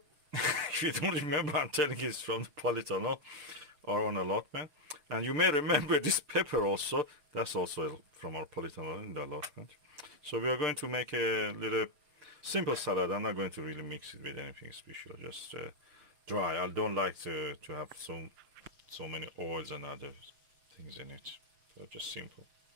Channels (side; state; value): left; late; 6.7 ms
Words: If you don't remember, I'm telling you, it's from the polytunnel or on allotment. And you may remember this pepper also. That's also from our polytunnel in the allotment. So we are going to make a little simple salad. I'm not going to really mix it with anything special, just dry. I don't like to have so many oils and other things in it. So just simple.